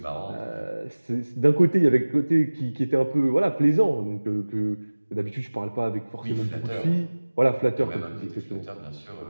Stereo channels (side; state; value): both; inverted; correlation -1.00